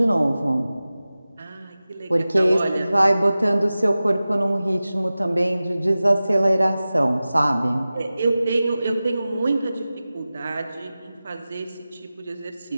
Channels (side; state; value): both; inverted; correlation -0.96